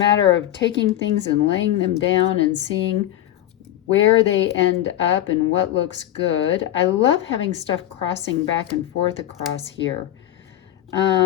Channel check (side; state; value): right; quieter; 12.7 dB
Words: of taking things and laying them down and seeing where they end up and what looks good. I love having stuff crossing back and forth across here.